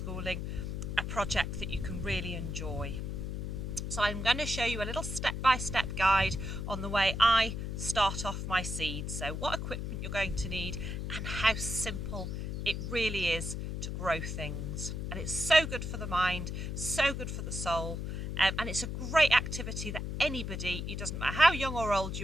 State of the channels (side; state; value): left; noise; hum, 4 dB below the sound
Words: a project that you can really enjoy. So I'm going to show you a little step-by-step guide on the way I start off my seeds. So what equipment you're going to need and how simple it really is to grow things. And it's so good for the mind, so good for the soul, and it's a great activity that anybody, it doesn't matter how young or old